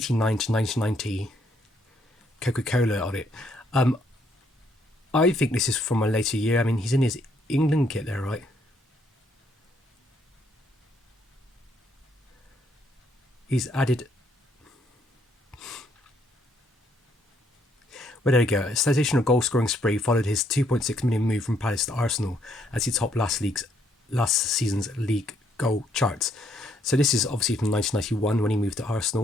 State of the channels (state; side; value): normal; both; correlation 0.70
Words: to 1990 Coca-Cola on it. I think this is from a later year. I mean, he's in his England kit there, right? He's added... Well, there you go. A sensational goal-scoring spree followed his 2.6 million move from Palace to Arsenal as he topped last season's league goal charts. So this is obviously from 1991 when he moved to